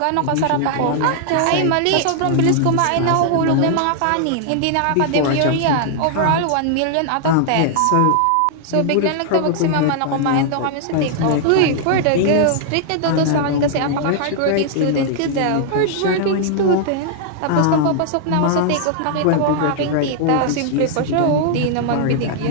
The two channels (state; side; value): different; both; correlation -0.01